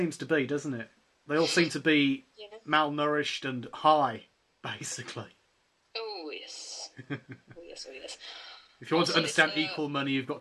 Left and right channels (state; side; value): identical; both; correlation 1.00